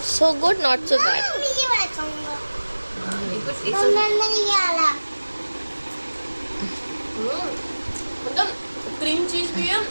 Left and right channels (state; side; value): inverted; both; correlation -1.00